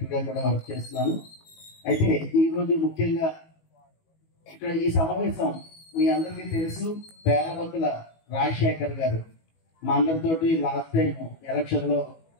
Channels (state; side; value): late; right; 19 ms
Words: గా కూడా వర్క్ చేస్తున్నాను. అయితే ఈ రోజు ముఖ్యంగా ఇక్కడ ఈ సమావేశం మీ అందరికీ తెలుసు, పేరబత్తుల రాజశేఖర్ గారు మా అందరితోటి లాస్ట్ టైం ఎలక్షన్ లో